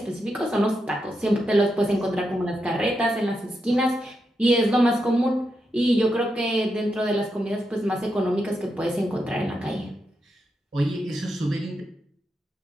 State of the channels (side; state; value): both; normal; correlation 0.85